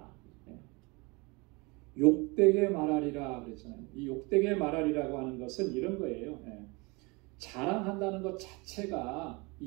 욕되게 말하리라 그랬잖아요. 이 욕되게 말하리라고 하는 것은 이런 거예요. 자랑한다는 것 자체가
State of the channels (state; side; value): quieter; left; 27.1 dB